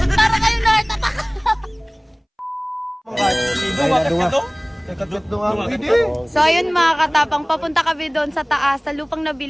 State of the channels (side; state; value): both; identical; correlation 1.00